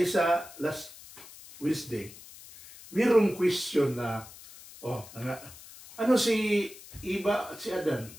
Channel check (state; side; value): noise; left; hiss, 18 dB below the sound